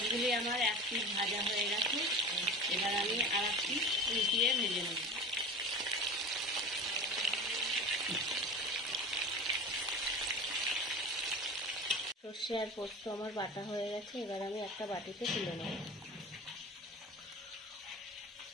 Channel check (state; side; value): normal; both; correlation 0.34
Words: আমার এক পিঠ ভাজা হয়ে গেছে, এবার আমি আর এক পিঠ উল্টিয়ে ভেজে নেব। সর্ষে আর পোস্ত আমার বাটা হয়ে গেছে, এবার আমি একটা বাটিতে তুলে নেব।